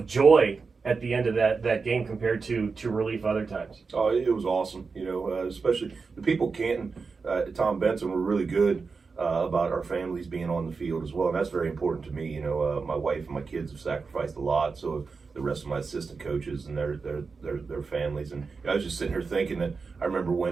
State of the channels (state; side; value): quieter; left; 4.7 dB